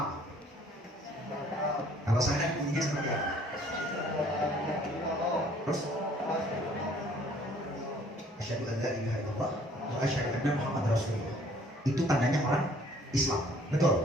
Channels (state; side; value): normal; both; correlation 0.58